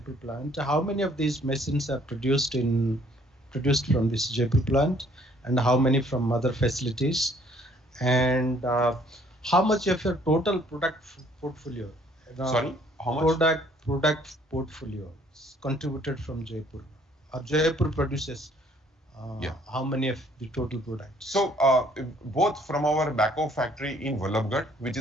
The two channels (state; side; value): normal; both; correlation 0.61